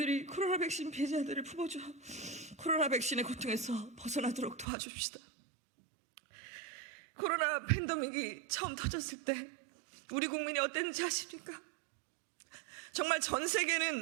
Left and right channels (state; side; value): drops out; left; at 4.7 s